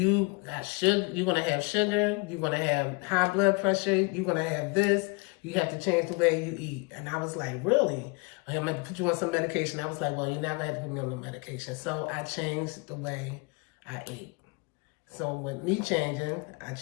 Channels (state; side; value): quieter; right; 29.5 dB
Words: got sugar, you're gonna have sugar, you're gonna have high blood pressure, you're gonna have this. You have to change the way you eat. And I was like, really? I'm going to put you on some medication. I was like, well, you're not going to have to put me on no medication. So I changed the way I ate. So with me changing, I